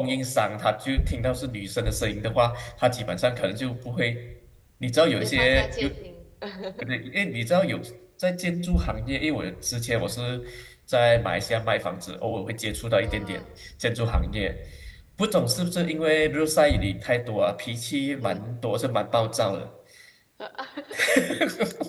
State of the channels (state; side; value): identical; both; correlation 1.00